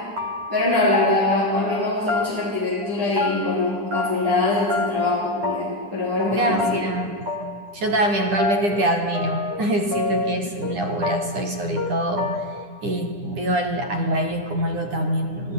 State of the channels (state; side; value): late; left; 9.9 ms